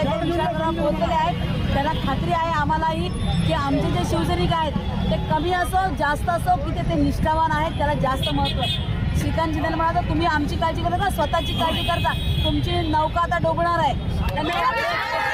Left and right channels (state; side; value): identical; both; correlation 1.00